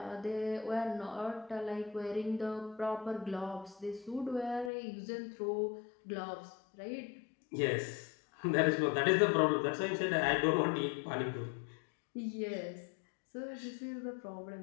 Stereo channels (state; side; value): drops out; right; at 4.7 s